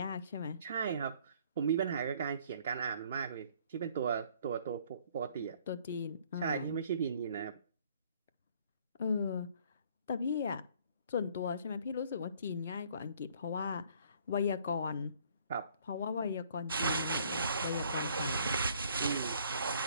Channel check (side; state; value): both; inverted; correlation -0.59